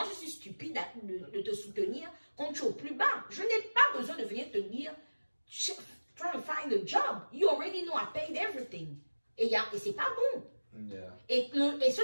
je suis stupide de te soutenir quand tu es au plus bas. Je n'ai pas besoin de venir te dire, try to find a job. You already know I paid everything. Et c'est pas bon. Yeah. Et ce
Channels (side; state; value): both; inverted; correlation -1.00